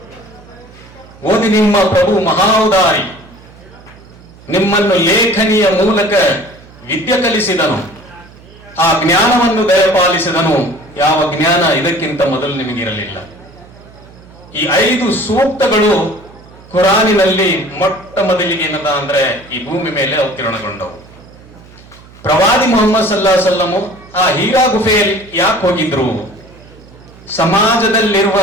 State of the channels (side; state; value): right; noise; hum, 23 dB below the sound